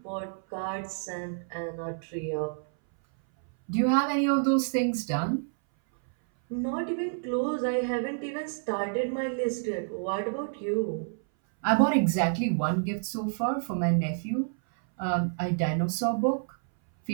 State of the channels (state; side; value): silent; left; 59 dB below the other